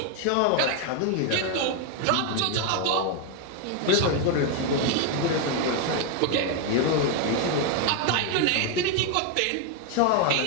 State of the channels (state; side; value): different; both; correlation 0.01